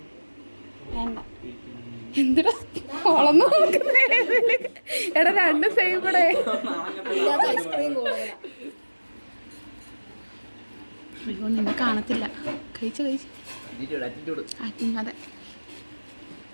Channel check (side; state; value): both; inverted; correlation -1.00